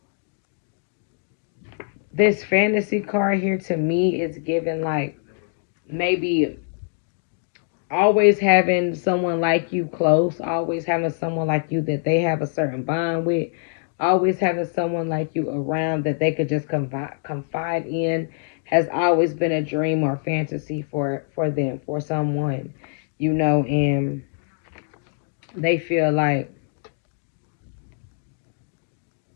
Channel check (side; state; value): right; silent; digital silence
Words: this fantasy card here to me is given like maybe always having someone like you close, always having someone like you that they have a certain bond with, always having someone like you around that they could just confide in has always been a dream or fantasy for them, for someone, and they feel like